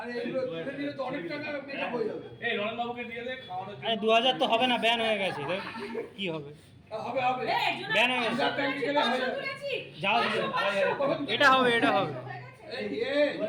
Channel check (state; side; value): identical; both; correlation 1.00